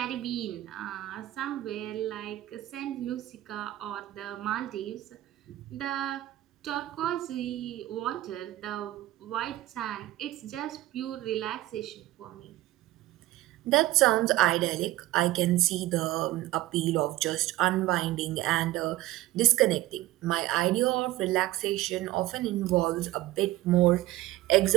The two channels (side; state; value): left; quieter; 16.1 dB